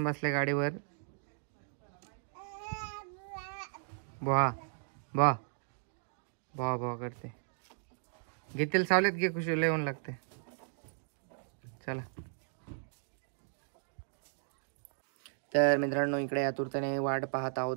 बसले गाडीवर. भाव करते. घेतील सावलेत घे. खुशी येऊन लागते. चला. तर मित्रांनो इकडे आतुरतेने वाट पाहत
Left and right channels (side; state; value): left; silent; digital silence